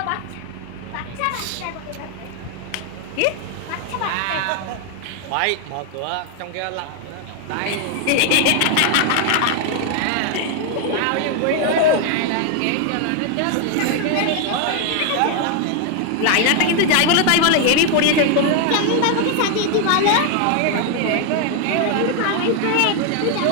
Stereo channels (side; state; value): both; different; correlation 0.01